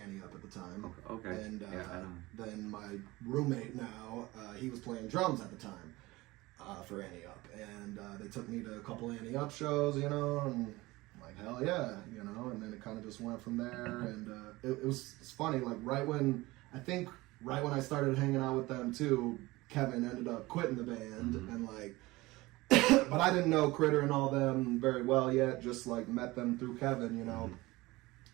Up at the time. Okay. And Yeah, I know. then my roommate now, he was playing drums at the time for Annie Up. And they took me to a couple Annie Up shows, you know, and I'm like, hell yeah, you know. And then it kind of just went from there. And it's funny, like right when I started hanging out with them too, Kevin ended up quitting the band and like, but I didn't know Critter and all them very well yet, just like met them through Kevin, you know,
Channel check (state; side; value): quieter; left; 20.5 dB